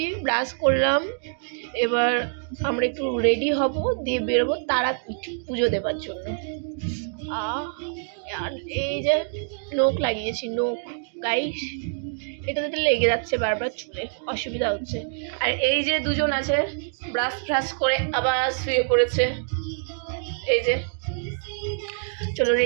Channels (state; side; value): silent; left; digital silence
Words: ব্রাশ করলাম, এবার আমরা একটু রেডি হব, দিয়ে বেরোবো তারাপীঠ পুজো দেবার জন্য। আর এই যে নোখ লাগিয়েছি, নোখ গাইস, এটাতে লেগে যাচ্ছে বারবার, চুলে অসুবিধা হচ্ছে। আর এই যে দুজন আছে ব্রাশ ফ্রাশ করে আবার শুয়ে পড়েছে। এই যে, চলো